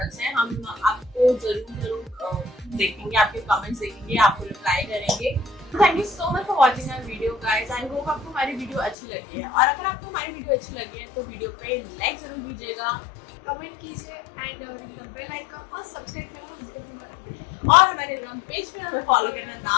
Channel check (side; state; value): right; drops out; at 9.0 s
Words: हैं। हम आपको जरूर देखेंगे, आपके कमेंट्स देखेंगे, आपको रिप्लाई करेंगे। Thank you so much for watching our video guys. I hope आपको हमारी वीडियो अच्छी लगी है, और अगर आपको हमारी वीडियो अच्छी लगी है तो वीडियो पे लाइक जरूर दीजिएगा, कमेंट कीजिए एंड बेल आइकन और सब्सक्राइब करना। और हमारे इंस्टाग्राम पेज पे हमें फॉलो करना